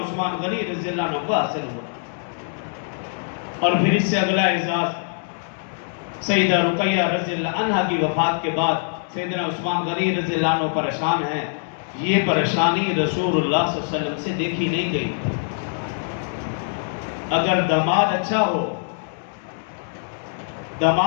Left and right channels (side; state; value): right; silent; digital silence